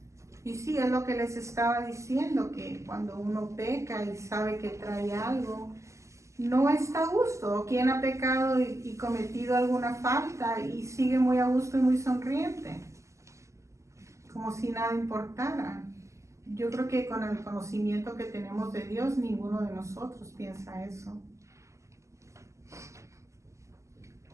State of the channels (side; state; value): left; late; 0.14 ms